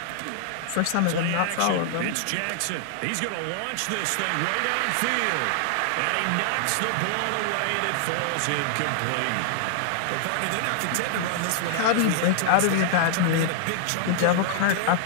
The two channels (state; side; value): different; both; correlation -0.01